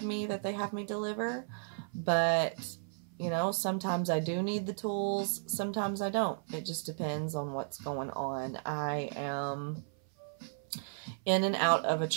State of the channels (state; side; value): silent; left; 55 dB below the other